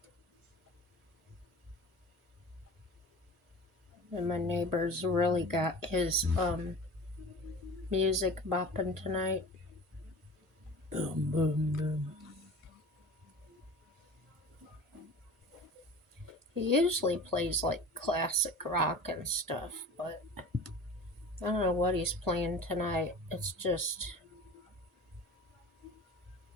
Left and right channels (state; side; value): normal; both; correlation 0.38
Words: And my neighbor's really got his music bopping tonight. Boom, boom, boom. He usually plays like classic rock and stuff, but I don't know what he's playing tonight. It's just